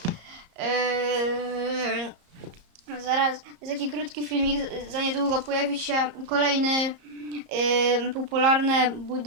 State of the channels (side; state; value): left; late; 34 ms